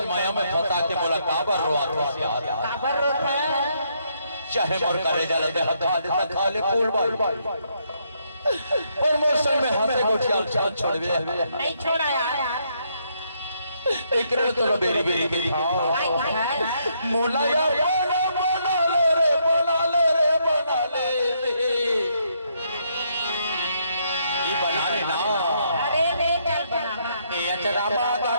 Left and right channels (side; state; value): both; inverted; correlation -0.74